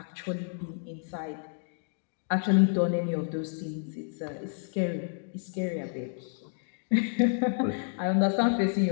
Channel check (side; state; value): right; silent; digital silence